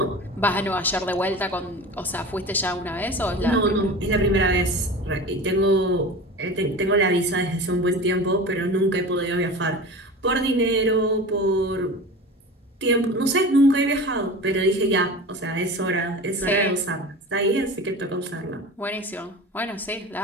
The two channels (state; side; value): normal; both; correlation 0.33